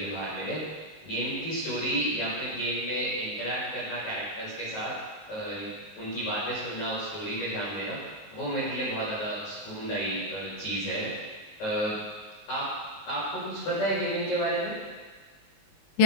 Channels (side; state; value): right; late; 19 ms